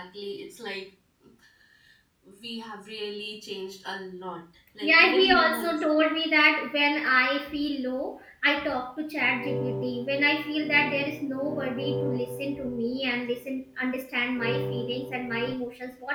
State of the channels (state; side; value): identical; both; correlation 1.00